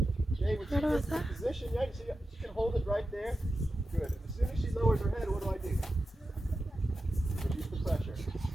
Okay, when she What was gets in that? position, yeah, you see, she can hold it right there. Good. And as soon as she lowers her head, what do I do? Reduce the pressure.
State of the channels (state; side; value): normal; both; correlation 0.91